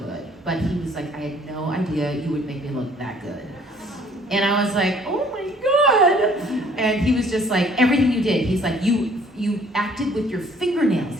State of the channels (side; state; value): both; normal; correlation 0.58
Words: but he was like, I had no idea you would make me look that good. And I was like, oh my God. And he was just like, everything you did, he's like, you acted with your fingernails.